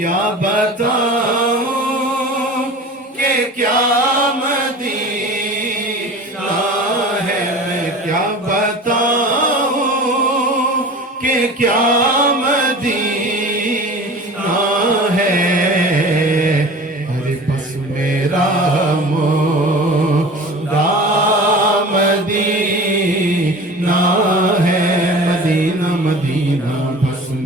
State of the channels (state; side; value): normal; both; correlation 0.38